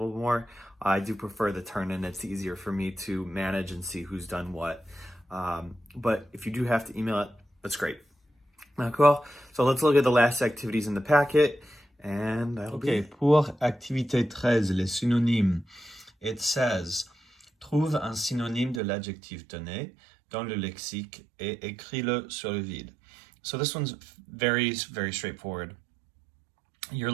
more, I do prefer the turn in. It's easier for me to manage and see who's done what. But if you do have to email it, that's great. D'accord? So let's look at the last activities in the packet, and that'll be it. Pour activité 13, les synonymes, it says, trouve un synonyme de l'adjectif donné dans le lexique et écris-le sur le vide. So this one's very, very straightforward. You're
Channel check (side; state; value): left; drops out; at 18.8 s